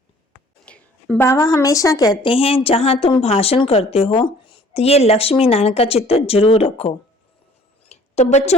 बाबा हमेशा कहते हैं, जहां तुम भाषण करते हो तो ये लक्ष्मी नारायण का चित्र जरूर रखो। तो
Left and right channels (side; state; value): both; normal; correlation 0.54